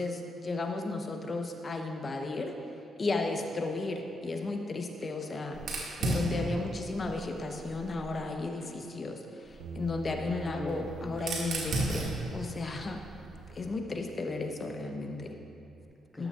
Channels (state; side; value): normal; both; correlation 0.80